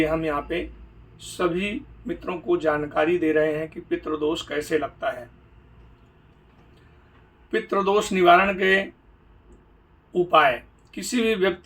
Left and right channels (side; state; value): both; identical; correlation 1.00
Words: हम यहाँ पे सभी मित्रों को जानकारी दे रहे हैं कि पितृदोष कैसे लगता है। पितृदोष निवारण के उपाय। किसी भी